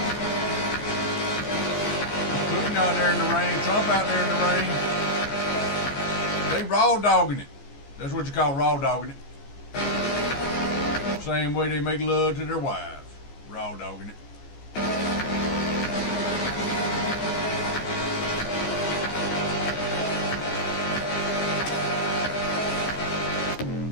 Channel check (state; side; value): late; right; 14 ms